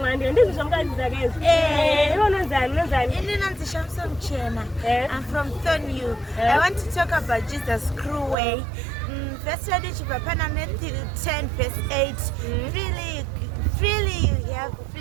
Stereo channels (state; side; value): drops out; left; at 8.3 s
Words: I'm from Thornhill. I want to talk about Jesus' cruel way. Verse 10 verse 8. Freely you have,